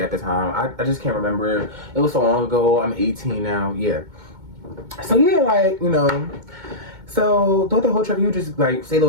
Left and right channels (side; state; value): left; late; 2.2 ms